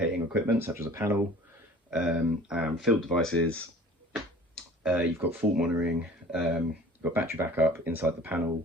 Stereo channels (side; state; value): both; normal; correlation 0.47